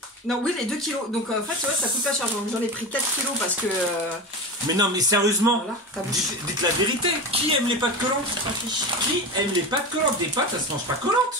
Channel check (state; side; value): normal; both; correlation 0.25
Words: Non, oui, les 2 kilos. Donc, en fait, tu vois, ça coûte pas cher. J'en ai pris 4 kilos parce que. Mais non, mais sérieusement, voilà, dites la vérité. Qui aime les pâtes collantes? Qui aime les pâtes collantes? Des pâtes, ça se mange pas